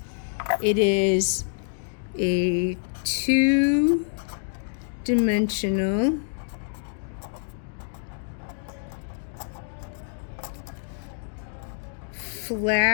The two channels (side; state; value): right; silent; digital silence